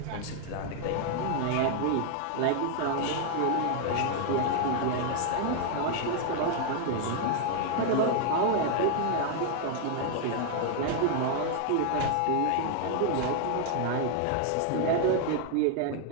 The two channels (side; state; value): both; different; correlation 0.00